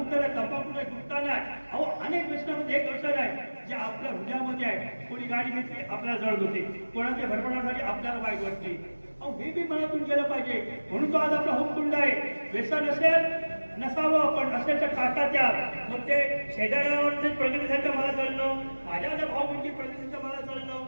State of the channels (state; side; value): inverted; both; correlation -1.00